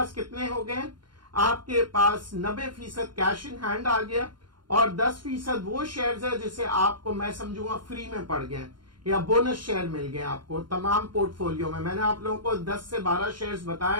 कितने हो गए? आपके पास 90% कैश इन हैंड आ गया और 10% वो शेयर्स है जिसे आपको मैं समझूंगा फ्री में पड़ गए या बोनस शेयर मिल गए आपको तमाम पोर्टफोलियो में। मैंने आप लोगों को 10 से 12 शेयर्स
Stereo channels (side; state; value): left; late; 0.72 ms